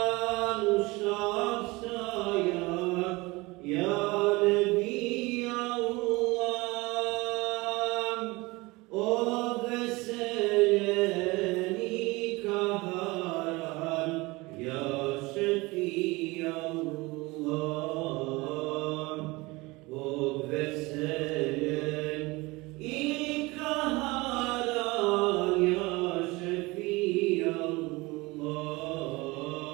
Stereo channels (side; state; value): left; quieter; 23.0 dB